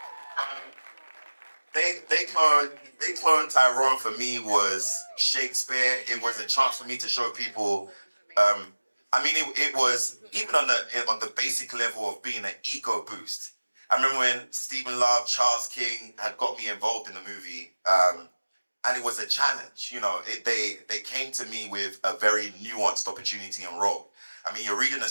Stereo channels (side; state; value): both; inverted; correlation -1.00